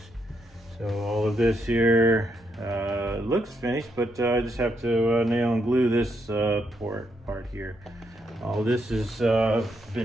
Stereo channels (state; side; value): normal; both; correlation 0.78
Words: So all of this here looks finished, but I just have to nail and glue this part here. All this has